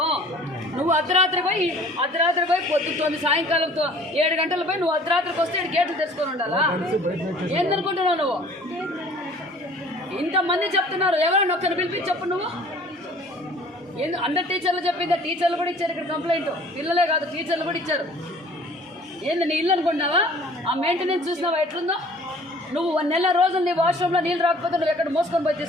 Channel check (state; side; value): normal; both; correlation 0.51